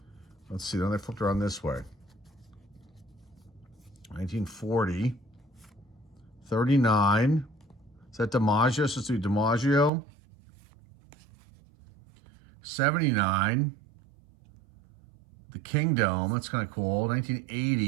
Let's see. Then they flipped around this way. 1940. 39. Is that DiMaggio? So let's do DiMaggio. 79. The Kingdom. That's kind of cool.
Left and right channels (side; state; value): left; drops out; at 9.9 s